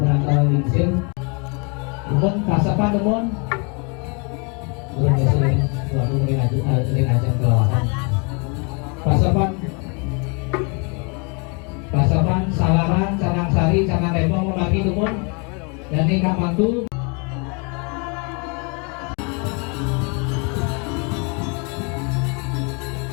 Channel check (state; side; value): quieter; right; 34.1 dB